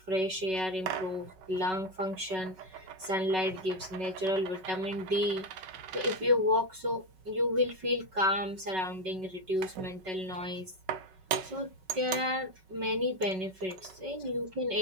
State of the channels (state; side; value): late; left; 5.3 ms